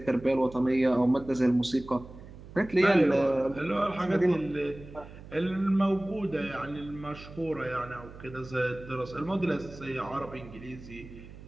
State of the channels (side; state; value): right; noise; hum, 16 dB below the sound